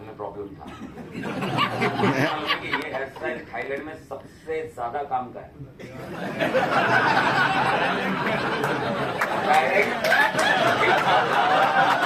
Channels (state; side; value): identical; both; correlation 1.00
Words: प्रॉब्लम था। कि ये हेयर स्टाइल थाईलैंड में सबसे ज्यादा काम का है।